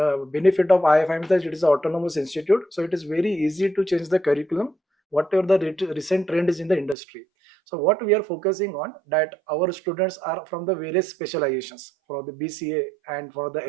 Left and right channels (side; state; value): left; drops out; at 7.0 s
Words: benefit of IFM is that it is an autonomous institute, so it is very easy to change the curriculum whatever the recent trend is in the industry. So what we are focusing on that our students are from the various specializations for the BCA and for the